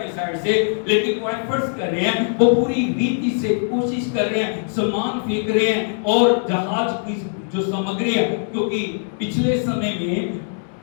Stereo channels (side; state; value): right; silent; digital silence